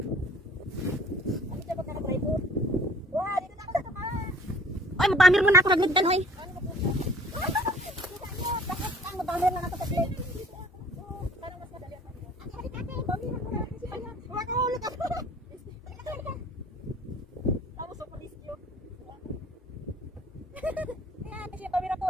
Ano siya pag naka-rifle? Wow, dito na ako sa tuka. Ay, mabamir mo na ako nagligdan, hoy. Mabamir na ako sa glit.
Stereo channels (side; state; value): both; normal; correlation 0.53